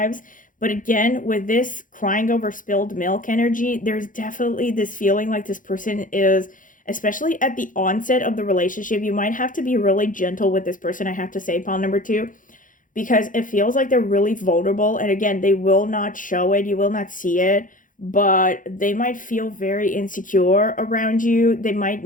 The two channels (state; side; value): late; right; 0.39 ms